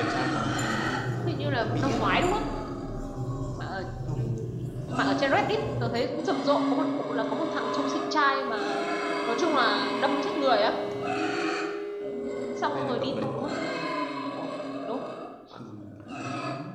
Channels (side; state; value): both; identical; correlation 1.00